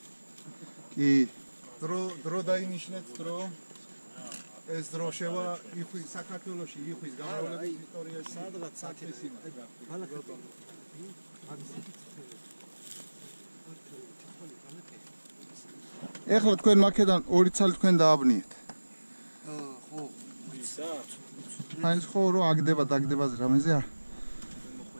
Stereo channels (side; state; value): both; inverted; correlation -1.00